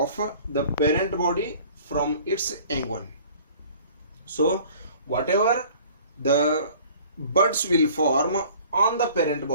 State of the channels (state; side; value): inverted; both; correlation -0.49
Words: the parent body from its young one. So whatever the buds will form on the parent